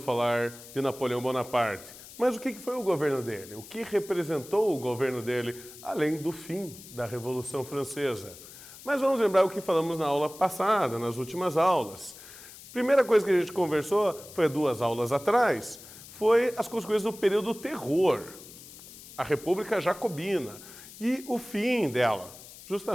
de Napoleão Bonaparte, mas o que foi o governo dele? O que representou o governo dele, além do fim da Revolução Francesa? Mas vamos lembrar o que falamos na aula passada, nas últimas aulas. Primeira coisa que a gente conversou, foi 2 aulas atrás, foi as consequências do período do terror, a República Jacobina e o fim dela,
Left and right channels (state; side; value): noise; left; hiss, 17 dB below the sound